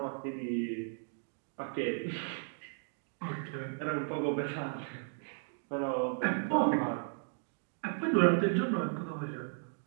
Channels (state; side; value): silent; left; 54 dB below the other